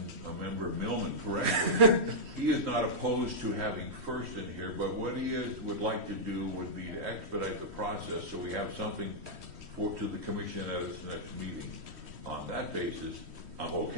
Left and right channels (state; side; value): late; left; 3.1 ms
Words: member Millman correctly, he is not opposed to having first in here, but what he would like to do would be to expedite the process so we have something to the commission at its next meeting. On that basis, I'm